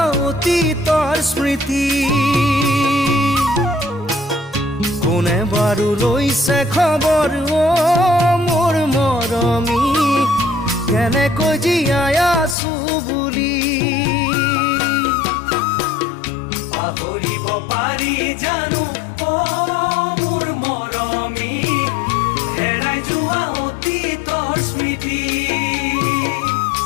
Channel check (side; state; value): right; drops out; at 12.6 s